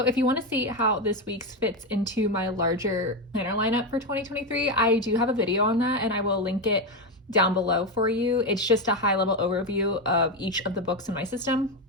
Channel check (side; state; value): both; normal; correlation 0.11